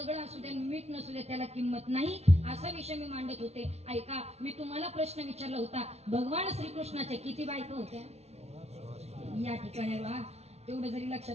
असू द्या मीठ नसू द्या त्याला किंमत नाही. असा विषय मी मांडत होते. ऐका, मी तुम्हाला प्रश्न विचारला होता, भगवान श्रीकृष्णाच्या किती बायका होत्या या ठिकाणी. तेवढं जरी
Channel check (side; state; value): left; late; 0.31 ms